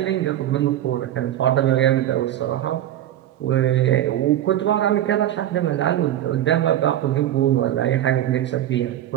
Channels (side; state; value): left; quieter; 12.3 dB